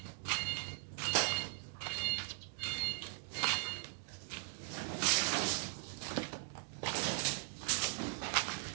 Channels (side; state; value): left; silent; digital silence